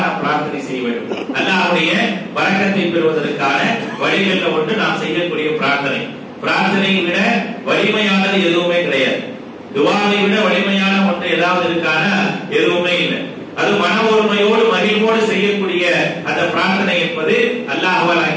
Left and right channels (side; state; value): both; identical; correlation 1.00